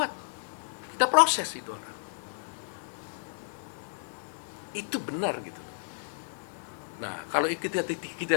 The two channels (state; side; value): silent; right; 56 dB below the other